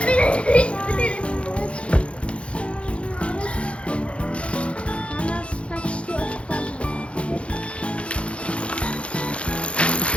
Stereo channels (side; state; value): right; late; 0.060 ms